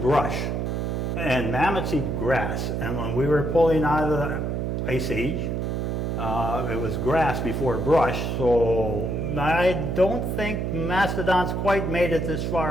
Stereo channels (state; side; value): noise; right; hum, 1 dB below the sound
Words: and mammoths eat grass. And when we were pulling out of the Ice Age, it was grass before brush, so I don't think mastodons quite made it this